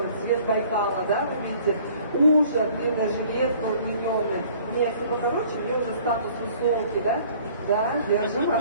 цвет Байкала, да, вы видите, ужа, длинная жилетка, удлиненная. У меня если покороче, у меня уже статус высокий, да? Да, держим,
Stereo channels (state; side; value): inverted; both; correlation -0.53